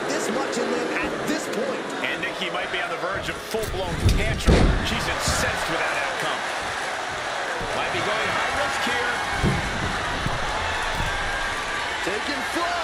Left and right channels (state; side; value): identical; both; correlation 1.00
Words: this much in them at this point? And Nikki might be on the verge of full-blown tantrum. She's incensed with that outcome. Might be going high risk here. Taking